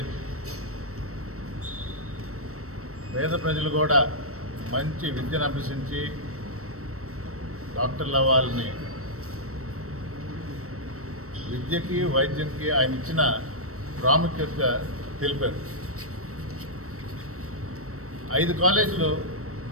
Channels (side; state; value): left; late; 0.64 ms